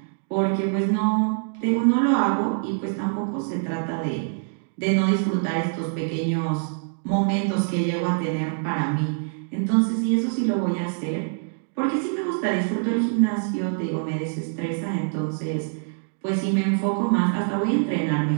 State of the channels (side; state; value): left; silent; digital silence